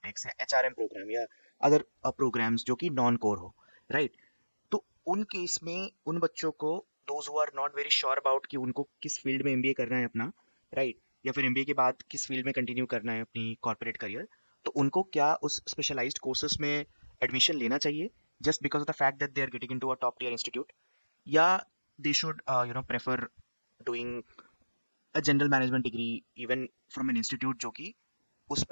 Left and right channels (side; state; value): both; inverted; correlation -1.00